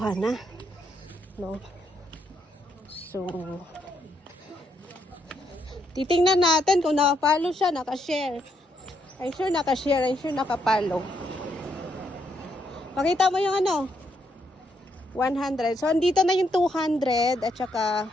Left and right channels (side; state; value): both; normal; correlation 0.76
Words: na. No? So, titingnan natin kung nakapalo siya, nakashare. I'm sure nakashare, I'm sure nakapalo. Pakita mo yung 100. So, andito na yung 200 at saka